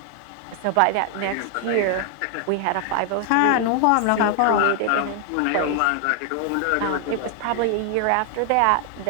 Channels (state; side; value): different; both; correlation 0.00